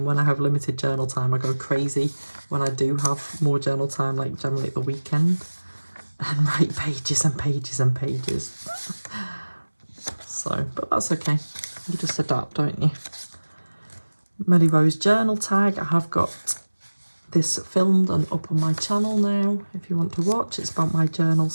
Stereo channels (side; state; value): both; inverted; correlation -1.00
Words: when I have limited journal time, I go crazy. When I do have more journal time, like generally at the weekend, and write pages and pages and pages. So, but that's okay. You just adapt, don't you? Melly Rose journal tag. I have got this filmed and up on my channel now, if you want to watch. It's about my journal